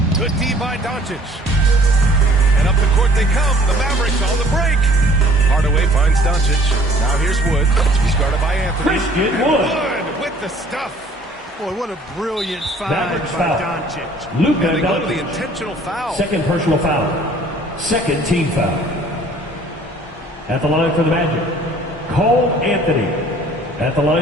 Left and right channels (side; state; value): both; normal; correlation 0.54